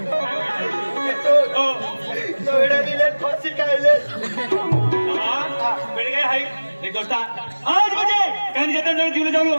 तो एवढा दिले फाशी खायले बेड काय हाय एक दोस्ता आज म्हणजे कान जतन जण दिले जाऊ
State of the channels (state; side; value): inverted; both; correlation -1.00